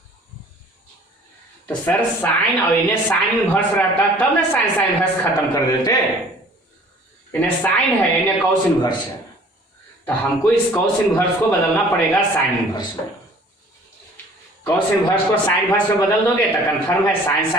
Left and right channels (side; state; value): both; normal; correlation 0.51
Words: तो सर साइन और इन्हें साइन इनवर्स रहता तब ना साइन इनवर्स खत्म कर देते, इन्हें साइन है इन्हें कॉस इनवर्स है, तो हमको इस कॉस इनवर्स को बदलना पड़ेगा साइन इनवर्स में। कॉस इनवर्स को साइन इनवर्स में बदल दोगे तो कंफर्म है साइन